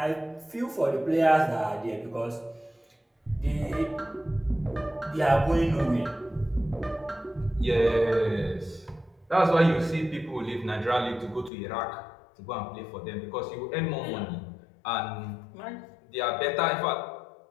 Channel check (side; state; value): right; drops out; at 11.5 s